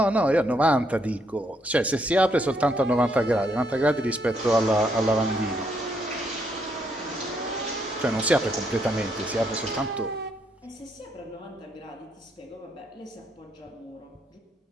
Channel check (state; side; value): normal; both; correlation 0.74